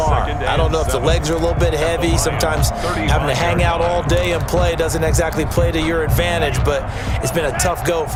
I don't know if the legs are a little bit heavy. Sometimes having to hang out all day and play doesn't exactly play to your advantage, but it's been a tough go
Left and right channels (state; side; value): identical; both; correlation 1.00